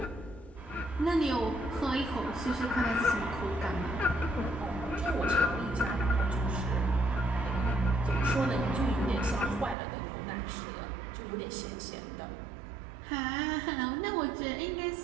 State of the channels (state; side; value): drops out; left; at 9.8 s